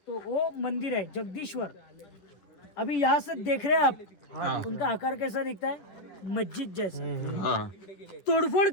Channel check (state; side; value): late; right; 11 ms